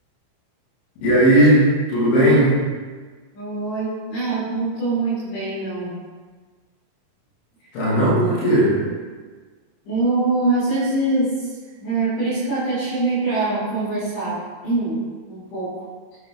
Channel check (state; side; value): late; right; 31 ms